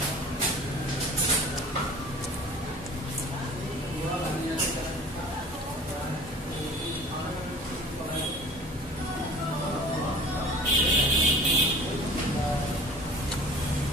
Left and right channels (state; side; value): normal; both; correlation 0.44